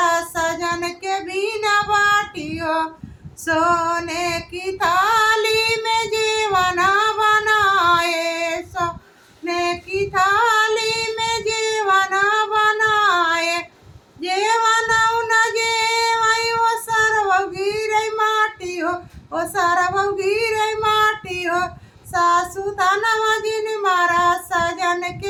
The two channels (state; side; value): identical; both; correlation 1.00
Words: सजन के बिना बाटी हो। सोने की थाली में जीवना बनाए, सोने की थाली में जीवना बनाए। जेवना न जेवाई वो सरव गिरे माटी हो, वो सरव गिरे माटी हो। सासू तनवा जिन मारा सजन